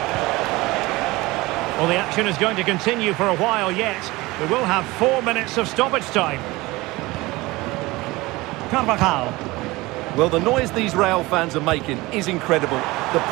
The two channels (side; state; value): left; quieter; 21.0 dB